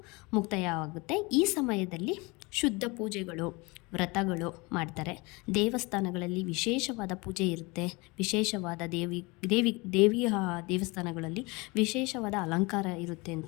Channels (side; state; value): right; quieter; 25.8 dB